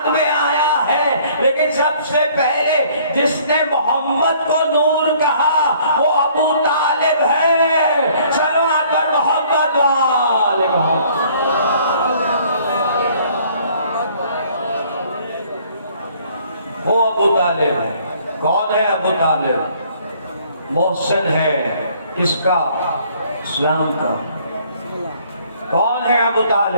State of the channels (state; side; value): inverted; both; correlation -0.59